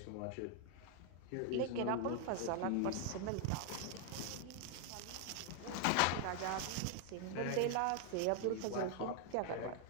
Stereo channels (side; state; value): both; different; correlation 0.00